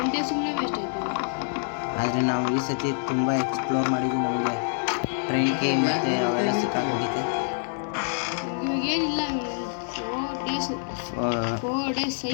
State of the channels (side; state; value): right; silent; digital silence